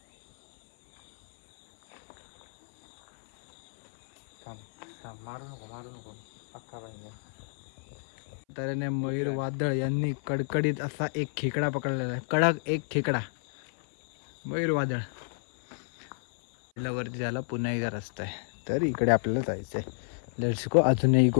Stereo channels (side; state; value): right; silent; 58 dB below the other